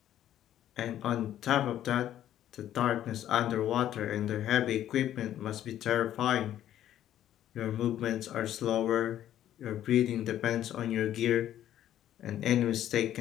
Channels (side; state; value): right; quieter; 11.7 dB